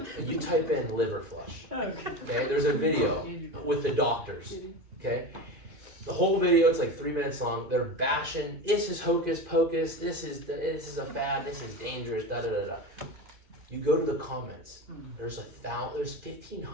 and you type in liver flush, okay, there's a video with the doctors, okay? The whole video, it's like 3 minutes long. They're bashing, this is hocus pocus, this is a fad, this is dangerous, da da da da. You go to the comments. There's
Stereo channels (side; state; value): left; late; 2.5 ms